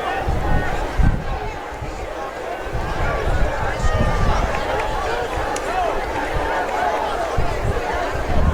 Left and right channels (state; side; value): identical; both; correlation 1.00